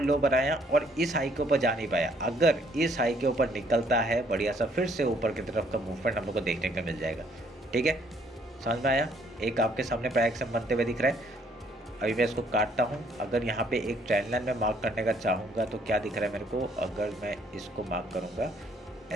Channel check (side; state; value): both; normal; correlation 0.65